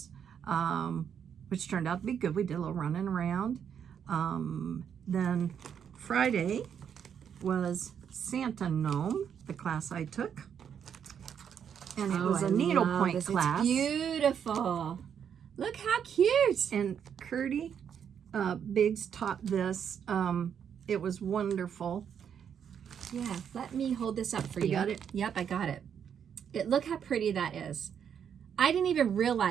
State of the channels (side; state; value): left; quieter; 8.1 dB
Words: which turned out to be good. We did a little running around. Then Friday was Santa Gnome, the class I took. And it was a needlepoint class. It's beautiful. Look how cute. And Curdy Biggs taught this. It was wonderful. Yeah, let me hold this up for you. You got it? Yep, I got it. Look how pretty that is. I didn't even